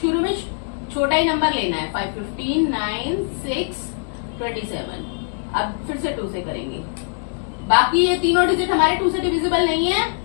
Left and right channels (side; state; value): right; silent; digital silence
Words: शुरू में छोटा ही नंबर लेना है। 5 15 9 6 27। अब फिर से 2 से करेंगे। बाकी ये तीनों डिजिट हमारे 2 से डिविजिबल नहीं है